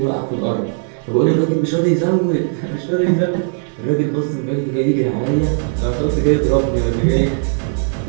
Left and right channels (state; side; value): silent; left; 60 dB below the other